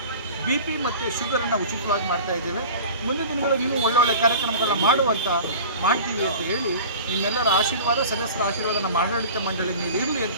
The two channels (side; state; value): both; inverted; correlation -0.38